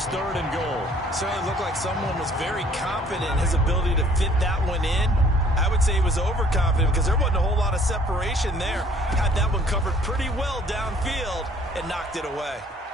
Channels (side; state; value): both; normal; correlation 0.58